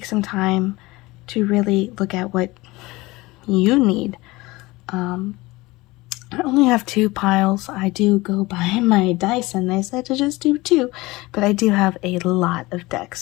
some time to really look at what you need. I only have 2 piles. I do go by my dice and they said to just do 2, but I do have a lot of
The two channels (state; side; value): quieter; right; 21.2 dB